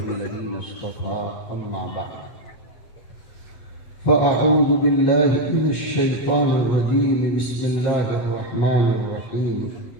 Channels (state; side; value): late; right; 7.5 ms